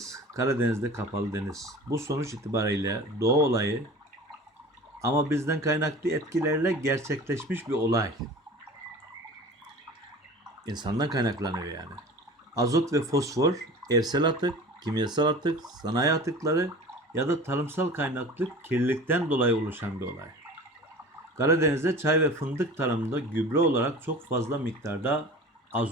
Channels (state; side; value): normal; both; correlation 0.39